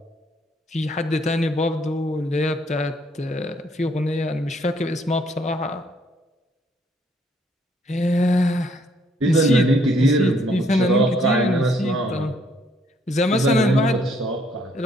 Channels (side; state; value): both; normal; correlation 0.67